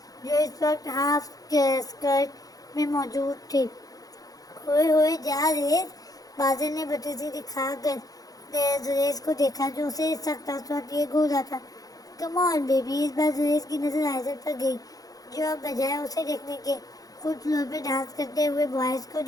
جو اس وقت ہاف اسکرٹ میں موجود تھی۔ ہوئے جا زریز، بازل نے بدتمیزی دکھا کر زریز کو دیکھا جو اسے سخت اثرات لیے گھور رہا تھا۔ کم آن بیبی۔ اس بار زریز کی نظر آئزل پر گئی، جو اب بجائے اسے دیکھنے کے خود فلور پہ ڈانس کرتے ہوئے بوائز کو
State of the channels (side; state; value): right; late; 0.18 ms